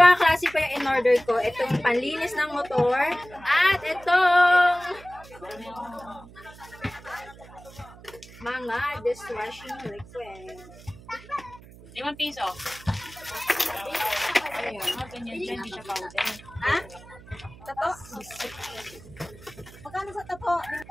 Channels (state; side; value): noise; right; hum, 20 dB below the sound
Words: klase pa yung in-order ko. Itong panlinis ng motor at itong mga dishwashing liquid. 5 piso. Ayun, ganyan dyan, hindi siya powder. Ha? Tato? Magkano sa tapo?